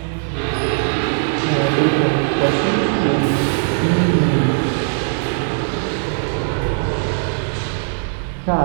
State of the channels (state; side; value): silent; left; digital silence